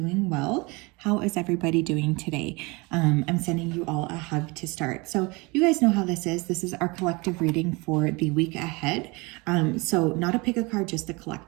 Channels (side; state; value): left; quieter; 26.3 dB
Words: well. How is everybody doing today? I'm sending you all a hug to start. So you guys know how this is. This is our collective reading for the week ahead. So not a pick a card, just the